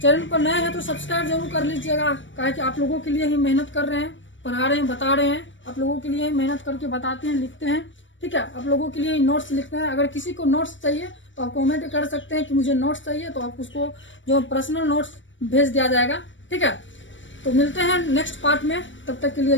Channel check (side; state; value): right; late; 0.55 ms